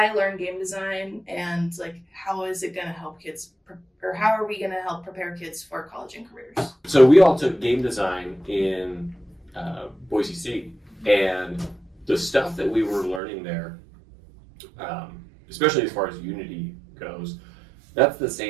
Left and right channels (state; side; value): drops out; left; at 13.2 s